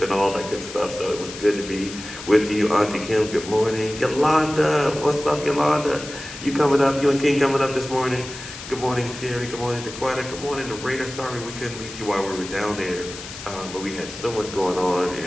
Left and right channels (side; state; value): left; noise; hiss, 12 dB below the sound